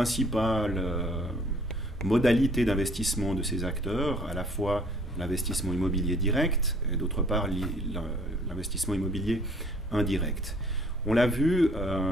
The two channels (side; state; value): both; normal; correlation 0.57